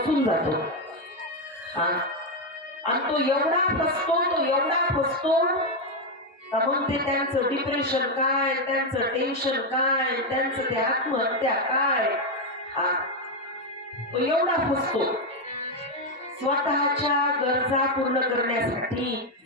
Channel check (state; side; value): normal; both; correlation 0.05